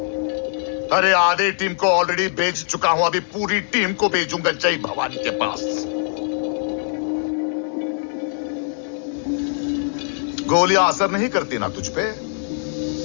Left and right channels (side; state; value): right; silent; digital silence